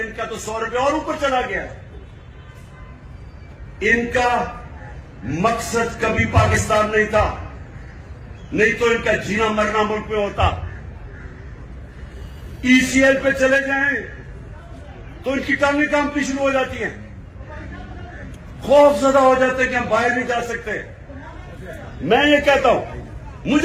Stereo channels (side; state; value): both; identical; correlation 1.00